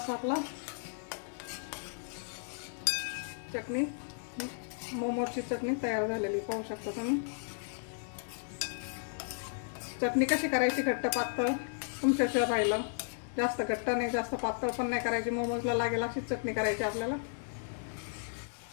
आपला चटणी मोमोजची चटणी तयार झालेली पाहू शकता तुम्ही. चटणी कशी करायची घट्ट पातळ तुमच्याशिवाय राहिलं. जास्त घट्ट नाही जास्त पातळ पण नाही करायची. मोमोजला लागेल अशीच चटणी करायची आपल्याला.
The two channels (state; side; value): silent; right; digital silence